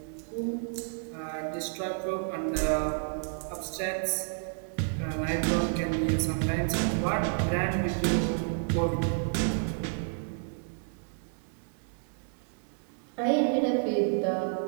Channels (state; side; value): silent; left; digital silence